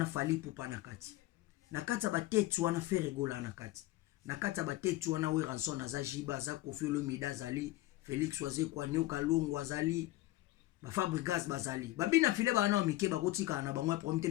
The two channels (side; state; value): right; quieter; 17.3 dB